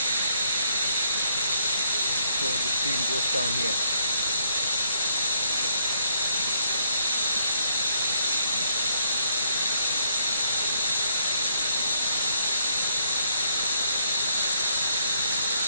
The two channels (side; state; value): both; inverted; correlation -0.71